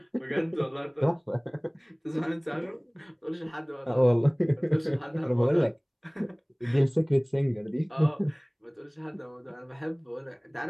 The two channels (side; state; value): both; identical; correlation 1.00